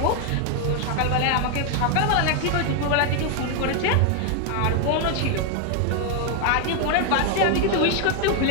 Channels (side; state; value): both; different; correlation 0.00